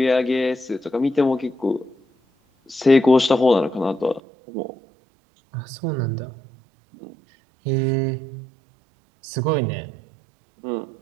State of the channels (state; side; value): drops out; left; at 4.2 s